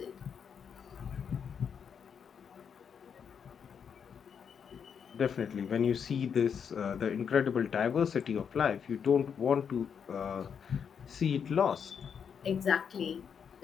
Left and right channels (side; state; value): right; quieter; 7.2 dB